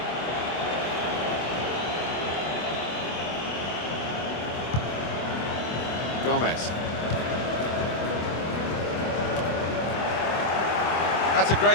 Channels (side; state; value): right; late; 25 ms